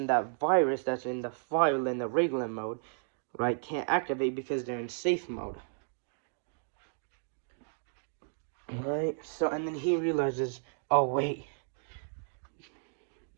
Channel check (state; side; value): silent; left; digital silence